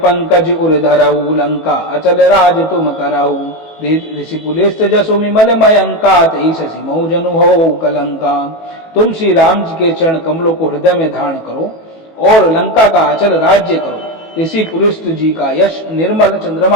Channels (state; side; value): late; right; 18 ms